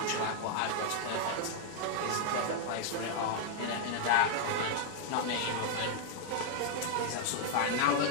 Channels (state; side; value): different; both; correlation -0.01